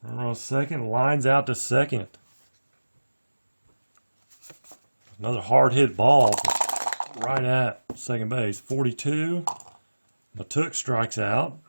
on second. Lines out to second. Another hard hit ball right at second base. 42. Matuk strikes out.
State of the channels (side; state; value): both; inverted; correlation -1.00